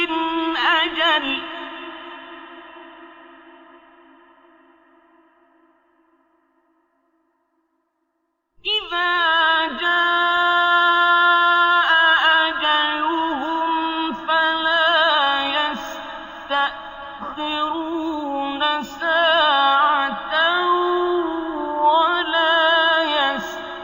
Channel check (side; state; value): both; identical; correlation 1.00